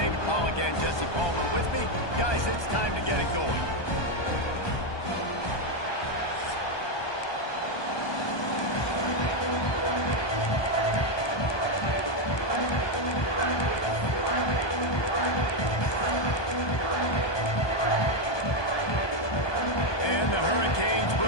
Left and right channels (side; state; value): right; late; 1.2 ms